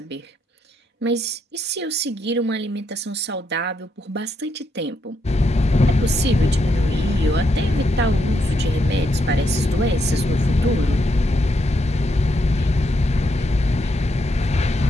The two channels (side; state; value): both; normal; correlation 0.78